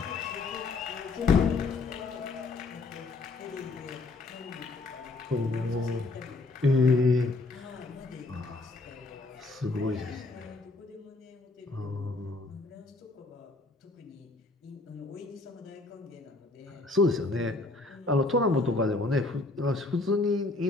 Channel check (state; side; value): quieter; right; 3.4 dB